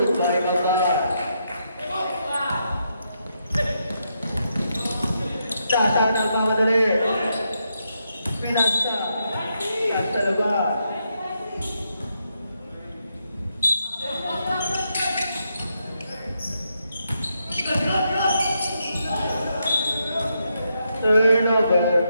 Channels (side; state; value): both; inverted; correlation -0.81